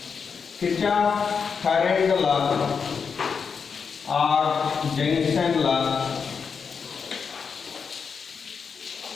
Kirchhoff current law or junction law.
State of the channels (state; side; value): quieter; right; 6.0 dB